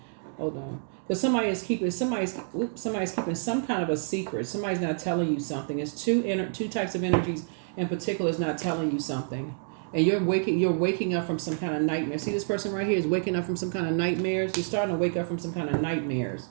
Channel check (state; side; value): silent; left; digital silence